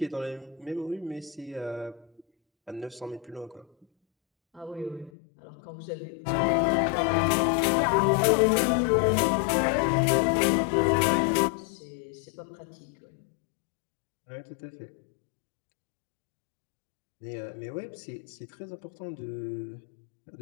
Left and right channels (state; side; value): drops out; right; at 5.1 s